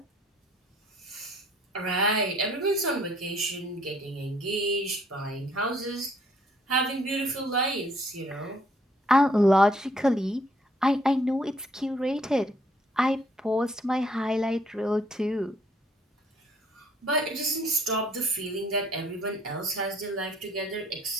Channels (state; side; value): normal; both; correlation 0.64